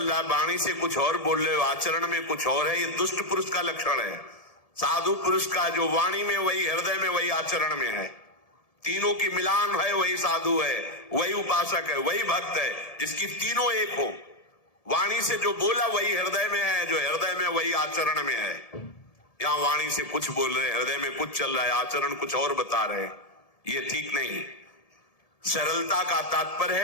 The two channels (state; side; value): late; right; 1.7 ms